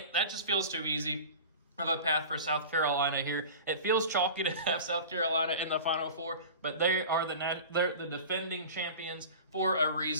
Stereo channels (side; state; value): both; inverted; correlation -0.36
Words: that just feels too easy of a path for South Carolina here. It feels chalky to have South Carolina in the Final Four, but they're the defending champions for a